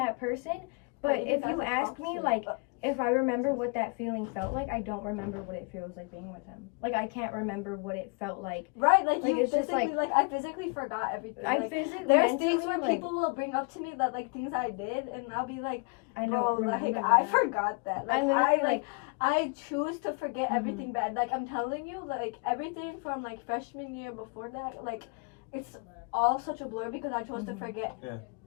person. But if you ask me, like, if I remember what that feeling felt like, I don't remember what it feels like being with him. Like, I can't remember what it felt like. Right, like you it's just physically, like I physically forgot everything. I Like, physically, there's mentally, things where like, people will bring up to me that like things I did, and I'll be like, I bro, don't like remember I that. forgot that. Like, I literally, like, I choose to forget Mhm. everything bad. Like I'm telling you, like everything from like freshman year before that, like it's all such a blur because I chose to forget Yeah.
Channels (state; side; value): quieter; right; 33.5 dB